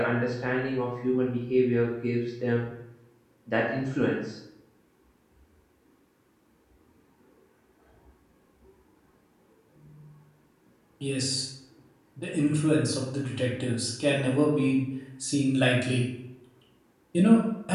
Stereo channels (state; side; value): identical; both; correlation 1.00